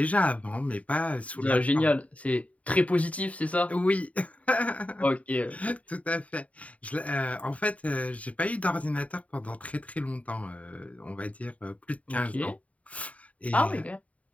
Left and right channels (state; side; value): late; right; 0.068 ms